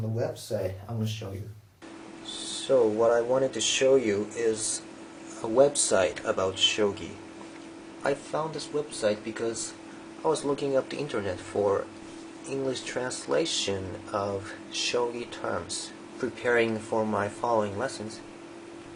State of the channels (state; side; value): identical; both; correlation 1.00